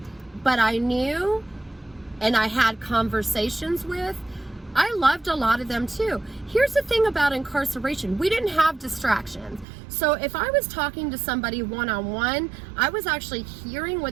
but I knew and I had conversations with, I loved a lot of them too. Here's the thing about incarceration. We didn't have distractions. So if I was talking to somebody one-on-one, I was actually hearing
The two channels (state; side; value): drops out; left; at 9.7 s